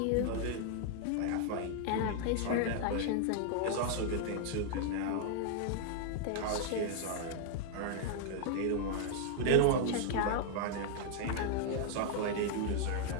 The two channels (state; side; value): different; both; correlation 0.00